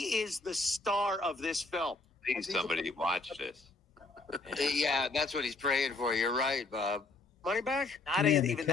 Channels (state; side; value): quieter; right; 3.4 dB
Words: is the star of this film. Please, somebody watch this. Yeah, that's what he's praying for. You're right, Bob. Money back? Not Yeah, even the